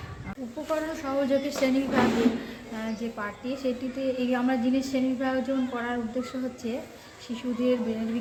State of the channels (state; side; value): identical; both; correlation 1.00